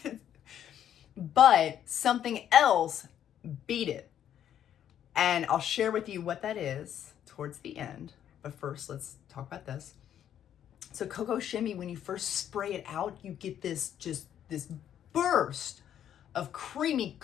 But something else beat it. And I'll share with you what that is towards the end. But first, let's talk about this. So Cocoa Shimmy, when you first spray it out, you get this burst of creamy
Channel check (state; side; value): quieter; right; 10.1 dB